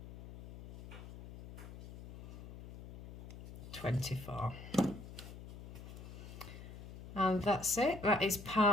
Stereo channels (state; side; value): noise; left; hum, 13 dB below the sound